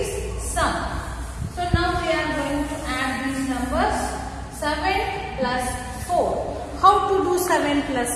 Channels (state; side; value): identical; both; correlation 1.00